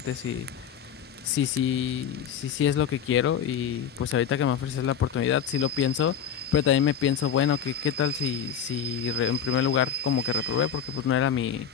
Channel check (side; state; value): right; quieter; 8.1 dB